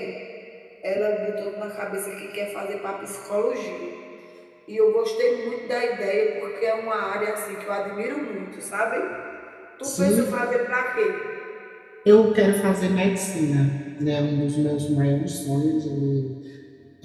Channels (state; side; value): identical; both; correlation 1.00